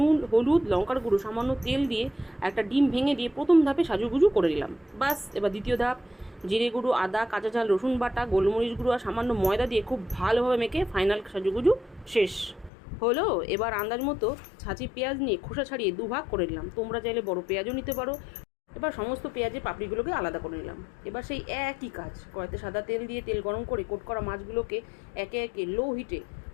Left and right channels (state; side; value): drops out; right; at 12.7 s